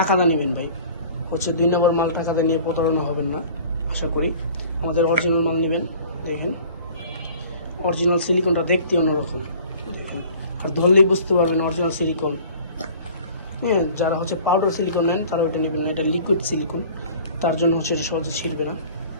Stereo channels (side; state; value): both; inverted; correlation -0.47